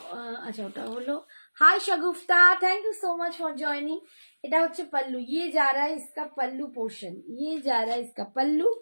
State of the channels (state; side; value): inverted; both; correlation -1.00